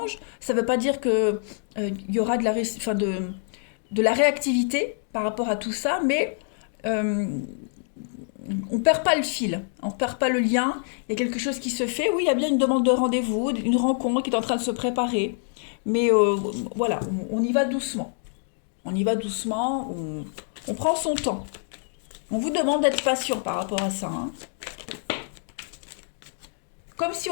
Ça ne veut pas dire que y aura enfin, de la réactivité par rapport à tout ça, mais euh, on perd pas le fil, on perd pas le lien. Il y a quelque chose qui se fait. Oui, il y a bien une demande de rendez-vous, une rencontre qui est en train de se préparer, mais voilà, on y va doucement. On y va doucement, on prend son temps. On vous demande d'être patient par rapport à ça. Hein. Comme si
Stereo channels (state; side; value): silent; right; 61 dB below the other